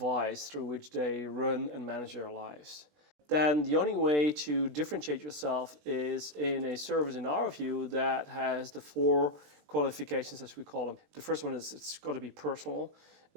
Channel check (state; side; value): late; left; 20 ms